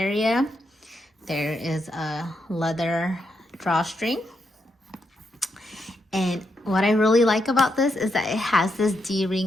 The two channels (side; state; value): both; normal; correlation 0.82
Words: There is a leather drawstring. And what I really like about this is that it has this